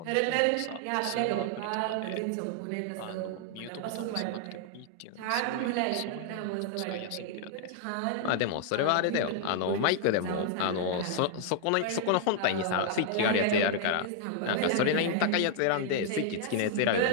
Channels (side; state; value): both; different; correlation 0.00